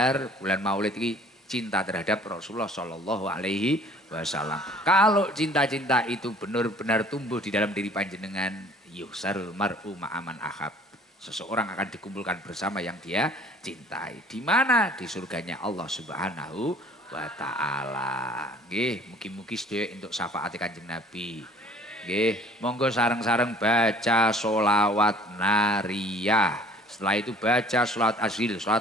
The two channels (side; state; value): both; normal; correlation 0.53